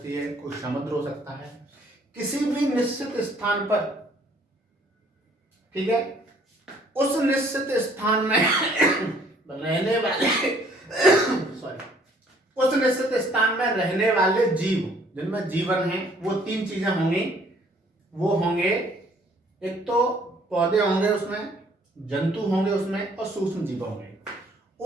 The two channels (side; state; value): both; normal; correlation 0.60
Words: है, कोई समुद्र हो सकता है। किसी भी निश्चित स्थान पर, ठीक है, उस निश्चित स्थान में रहने वाले सॉरी उस निश्चित स्थान में रहने वाले जीव जिनमें जीवन है, वो तीन चीजें होंगी। वो होंगे, एक तो पौधे होंगे, उसमें जंतु होंगे, उसमें और सूक्ष्म जीव होंगे।